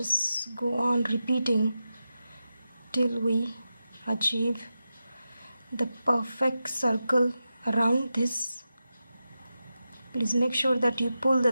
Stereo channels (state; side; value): inverted; both; correlation -0.91